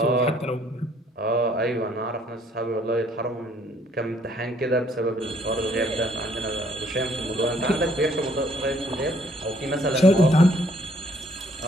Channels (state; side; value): normal; both; correlation 0.64